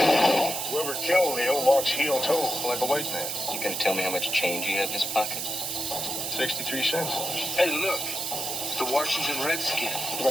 Whoever killed Leo walks heel-toe like a white man. You gonna tell me how much change you have in his pocket? 63 cents. Hey, look. It's the Washington Redskin. We're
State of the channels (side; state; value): right; noise; hiss, 3 dB below the sound